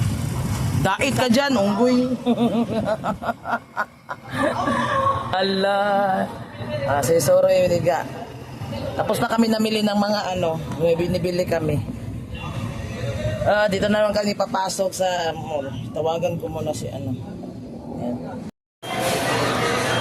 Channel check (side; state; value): both; identical; correlation 1.00